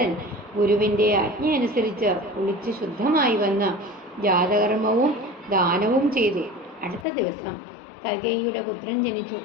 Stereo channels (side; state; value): right; drops out; at 7.1 s